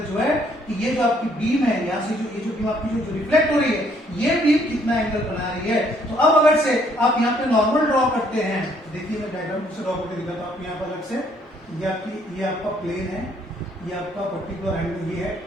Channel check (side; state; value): both; normal; correlation 0.66